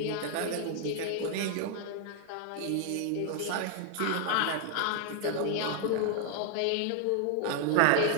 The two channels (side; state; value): both; different; correlation 0.00